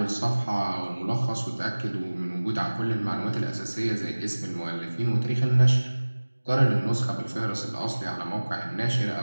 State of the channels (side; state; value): both; inverted; correlation -1.00